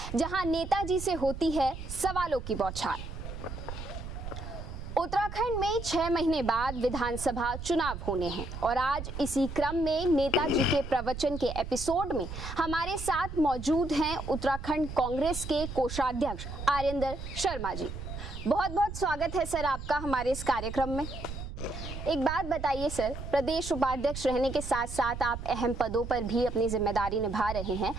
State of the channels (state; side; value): noise; right; rumble, 8 dB below the sound